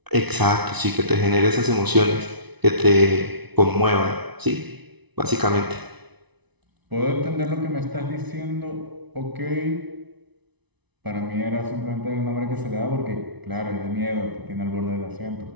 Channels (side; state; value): left; late; 1.0 ms